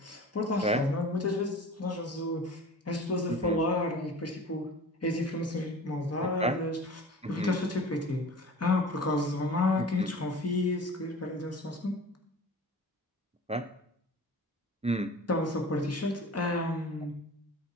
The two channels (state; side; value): normal; both; correlation 0.40